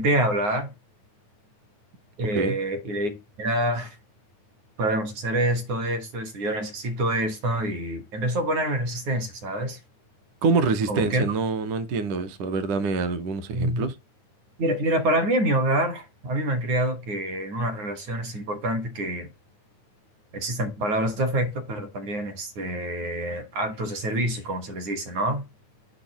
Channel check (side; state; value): left; late; 9.5 ms